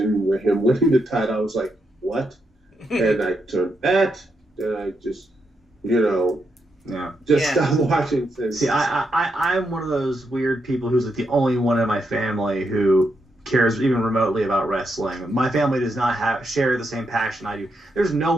with him winning the title, I was like, what? And I turned that, and I just, stopped watching things. See, I'm one of those weird people who's like the only one in my family who cares even remotely about wrestling. My family does not share the same passion I do. There's no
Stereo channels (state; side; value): normal; both; correlation 0.82